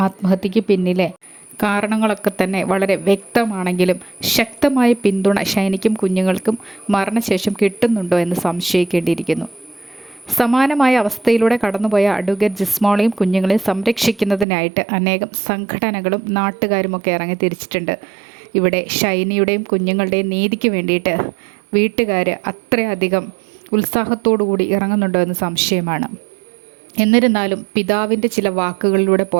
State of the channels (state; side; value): drops out; left; at 14.5 s